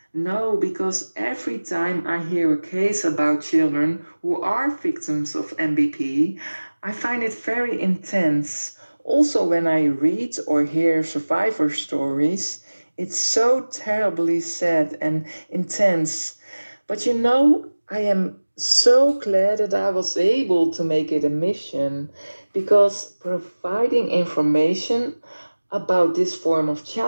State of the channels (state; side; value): inverted; both; correlation -1.00